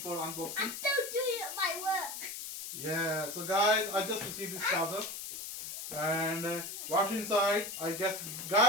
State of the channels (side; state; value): left; noise; hiss, 7 dB below the sound